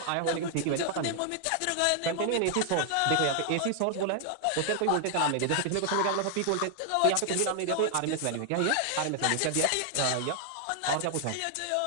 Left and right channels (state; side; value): different; both; correlation 0.00